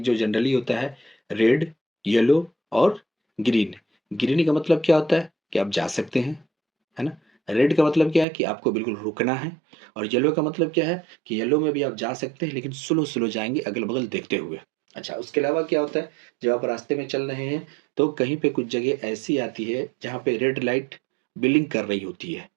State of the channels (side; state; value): left; drops out; at 8.2 s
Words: جو جنرلی ہوتا ہے ریڈ، یلو اور گرین۔ گرین کا مطلب کیا ہوتا ہے کہ آپ جا سکتے ہیں، ہے نا۔ ریڈ کا مطلب کیا ہے کہ آپ کو بالکل رکنا ہے، اور یلو کا مطلب کیا ہے کہ یلو میں بھی آپ جا سکتے ہیں لیکن سلو سلو جائیں گے، اگل بغل دیکھتے ہوئے۔ اچھا، اس کے علاوہ کیا ہوتا ہے، جب آپ راستے میں چل رہے ہیں تو کہیں پہ کچھ جگہ ایسی آتی ہے جہاں پہ ریڈ لائٹ بلنگ کر رہی ہوتی ہے۔